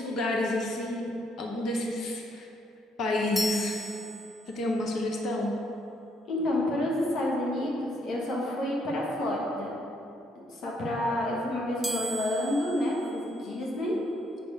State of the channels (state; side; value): normal; both; correlation 0.72